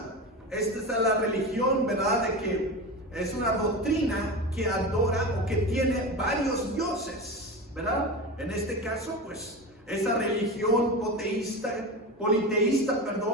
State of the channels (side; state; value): both; normal; correlation 0.25